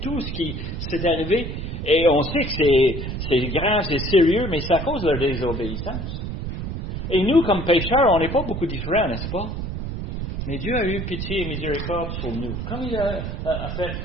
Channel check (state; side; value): noise; right; rumble, 5 dB below the sound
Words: tout ce qui s'est arrivé. Et on sait que c'est grand, c'est sérieux, mais c'est à cause de leur désobéissance. Et nous, comme pécheurs, on n'est pas beaucoup différents, n'est-ce pas? Mais Dieu a eu pitié et miséricorde sur nous, comme il a fait